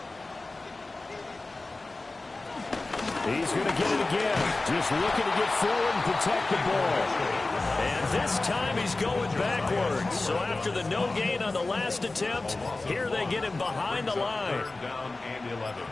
He's going to get it again. Just looking to get forward and protect the ball. And this time he's going backwards. So after the no gain on the last attempt, here they get him behind the line. 3rd down and 11.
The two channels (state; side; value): quieter; right; 3.2 dB